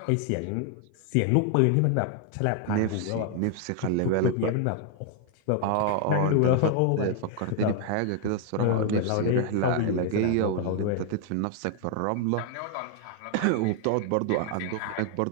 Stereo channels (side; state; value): both; different; correlation 0.00